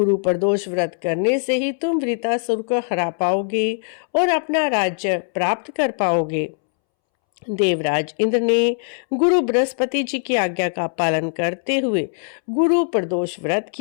प्रदोष व्रत करने से ही तुम वृतासुर को हरा पाओगे और अपना राज्य प्राप्त कर पाओगे। देवराज इंद्र ने गुरु बृहस्पति जी की आज्ञा का पालन करते हुए गुरु प्रदोष व्रत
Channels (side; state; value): right; silent; 65 dB below the other